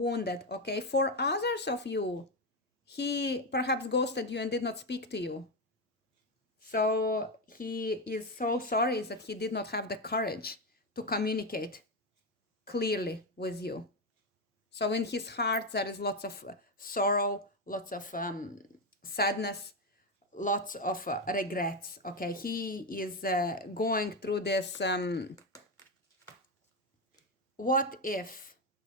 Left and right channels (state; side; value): normal; both; correlation 0.10